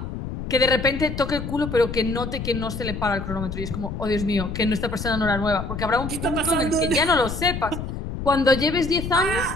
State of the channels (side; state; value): left; noise; rumble, 6 dB below the sound